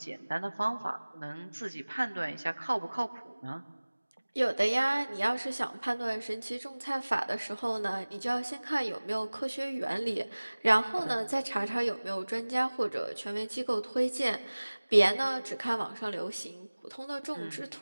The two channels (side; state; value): both; inverted; correlation -1.00